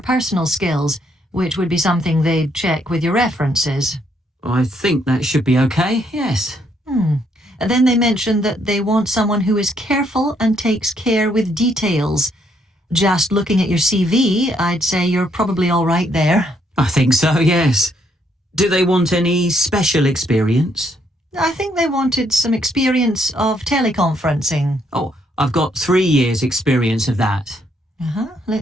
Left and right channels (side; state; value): both; normal; correlation 0.72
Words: skills, which would be something they'd check with your references. I think that should be okay, yes. Then they mention that they want someone who is careful and takes care with details. Just looking at your CV, I'd say you're probably all right there. I think so, yes. Do they want any special experience? I think they wanted some experience of teleconferencing. Oh, I've got 3 years' experience of that.